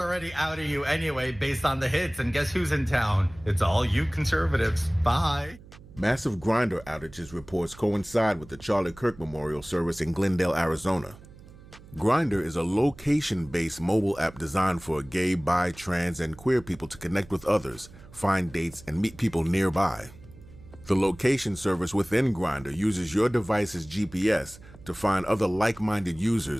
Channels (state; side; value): noise; right; hum, 20 dB below the sound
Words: outing you anyway based on the hits. And guess who's in town? It's all you conservatives. Bye. Massive Grindr outages reports coincide with the Charlie Kirk Memorial Service in Glendale, Arizona. Grindr is a location-based mobile app designed for gay, bi, trans, and queer people to connect with others, find dates, and meet people nearby. The location service within Grindr uses your device's GPS to find other like-minded